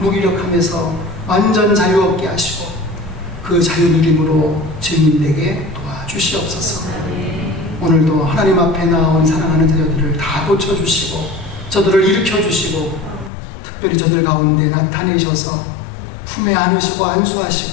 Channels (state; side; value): drops out; right; at 13.3 s